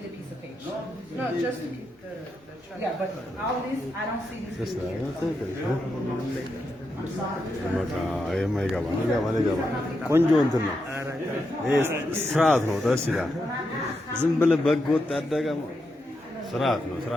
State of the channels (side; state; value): both; normal; correlation 0.84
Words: a piece of paper. No, just the trust. Yeah, but all this, I don't see these Just people that. here. That's it. በቃ የማይገባ ይገባ ቆንጆ እንትን ነው። ይሄ ስርዓት ነው። ደስ ይላል። ዝም ብለህ በግ ወጥ ያደገ ስርዓት ነው።